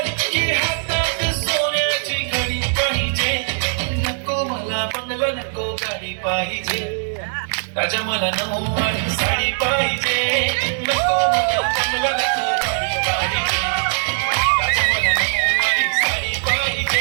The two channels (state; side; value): silent; left; 65 dB below the other